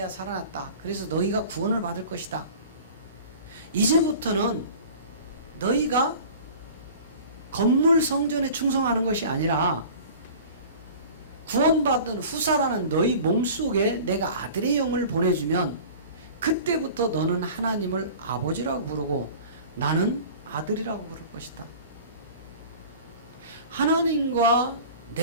살아났다. 그래서 너희가 구원을 받을 것이다. 이제부터는 너희가 건물 성전에 충성하는 것이 아니라 구원받은 후사라는 너희 몸속에 내가 아들의 영을 보내주면 그때부터 너는 하나님을 아버지라고 부르고 나는 아들이라고 부를 것이다. 하나님과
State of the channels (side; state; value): both; inverted; correlation -0.41